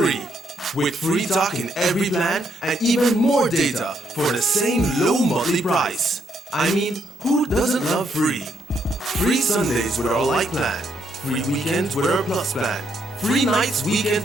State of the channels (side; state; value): both; normal; correlation 0.75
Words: With free talk in every plan and even more data for the same low monthly price. I mean, who doesn't love free? Free Sundays with our light plan, free weekends with our Plus plan, free nights,